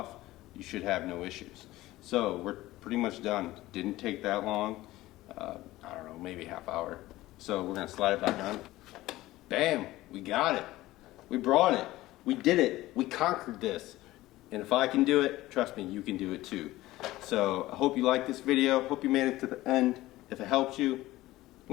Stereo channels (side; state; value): right; quieter; 17.1 dB